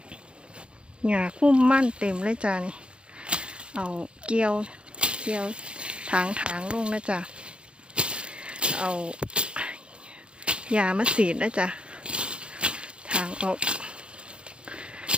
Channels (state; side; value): late; left; 0.056 ms